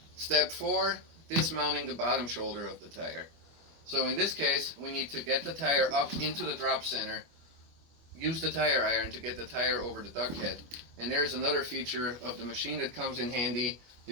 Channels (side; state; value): left; late; 25 ms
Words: Step 4, dismounting the bottom shoulder of the tire. So in this case, we need to get the tire up into the drop center, use the tire iron to get the tire over the duck head. And there's another feature of the machine that comes in handy.